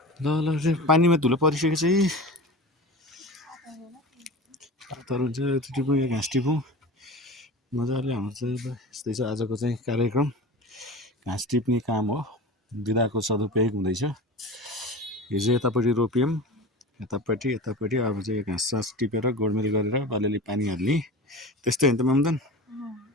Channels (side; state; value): both; normal; correlation 0.33